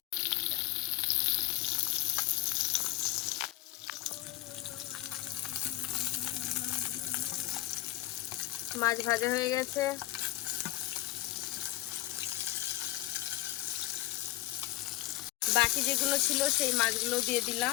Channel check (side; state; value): right; quieter; 17.2 dB